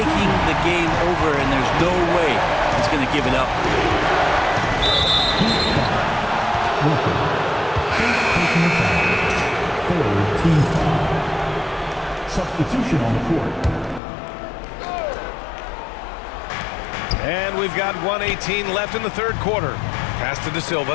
the game over, and there's no way he's going to give it up. Taking the foul. 4th team foul. Substitution on the court. And we've got 1:18 left in the 3rd quarter. Pass to De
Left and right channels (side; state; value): right; drops out; at 14.0 s